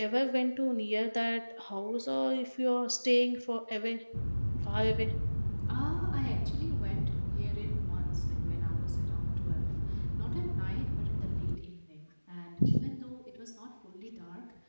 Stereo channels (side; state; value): both; inverted; correlation -1.00